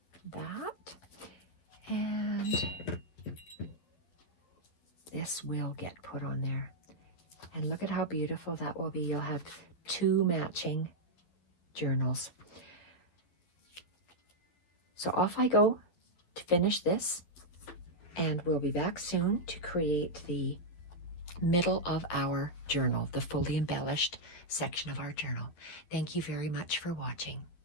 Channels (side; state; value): right; late; 12 ms